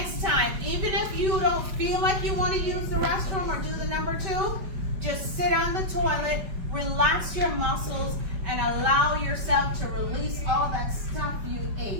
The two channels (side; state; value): left; late; 5.2 ms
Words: time. Even if you don't feel like you want to use the restroom or do the number 2, just sit on the toilet, relax your muscles, and allow yourself to release all that stuff you